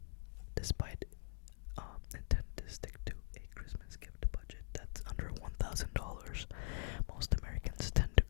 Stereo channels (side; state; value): right; silent; digital silence